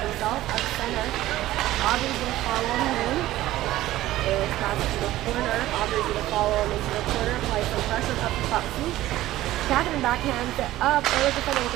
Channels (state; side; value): quieter; left; 15.4 dB